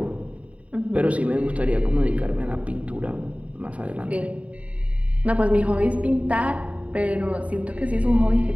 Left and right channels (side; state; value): left; late; 0.066 ms